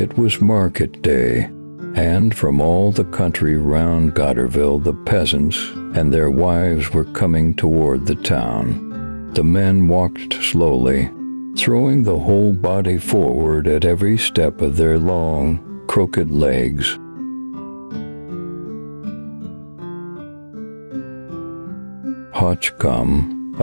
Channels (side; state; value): both; inverted; correlation -1.00